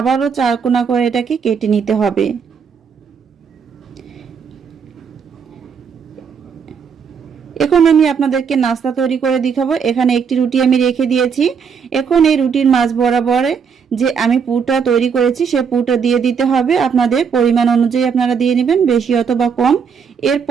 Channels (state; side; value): quieter; left; 6.5 dB